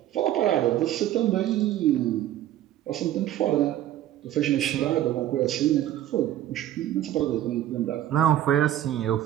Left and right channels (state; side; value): quieter; left; 12.7 dB